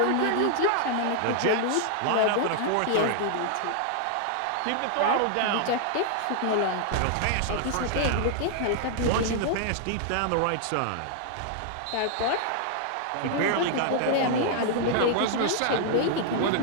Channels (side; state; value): both; different; correlation -0.01